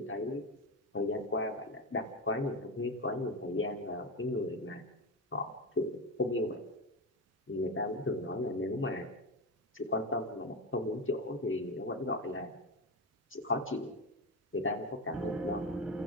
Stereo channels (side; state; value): both; normal; correlation 0.18